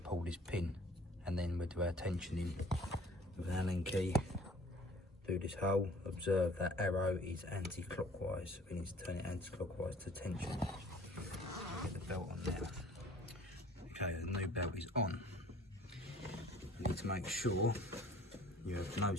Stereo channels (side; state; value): both; normal; correlation 0.52